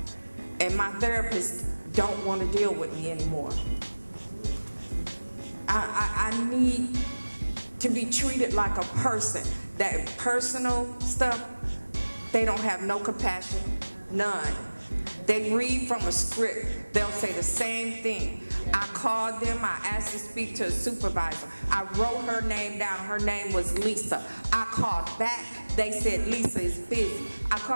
And my therapists don't want to deal with me anymore. I need to be treated like a person. That personal stuff, they don't have no compassion, none. They read from a script. They'll say the same thing. I called them, I asked to speak to a supervisor. I wrote her name down, her name was Lisa. I called back, they said Lisa is busy. I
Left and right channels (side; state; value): both; inverted; correlation -1.00